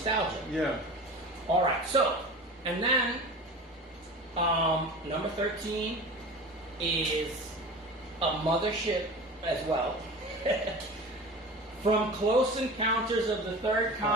Yeah. All right. So, and then number 13 is a mothership as well. From Close Encounters of the Third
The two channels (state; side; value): normal; both; correlation 0.35